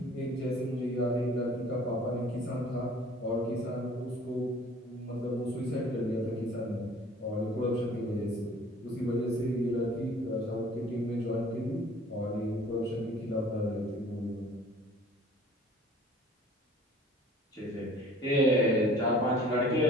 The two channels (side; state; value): both; normal; correlation 0.50